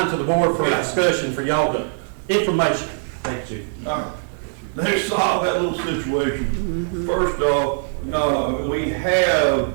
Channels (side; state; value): left; silent; 65 dB below the other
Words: to the board for discussion for y'all to, information. Thank you. All right. Let's solve that little situation. First off, we have,